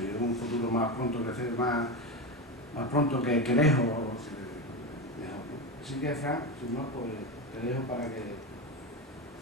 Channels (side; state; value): both; normal; correlation 0.18